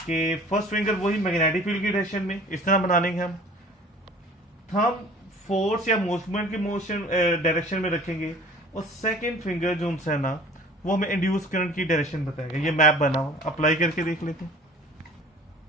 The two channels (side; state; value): both; normal; correlation 0.47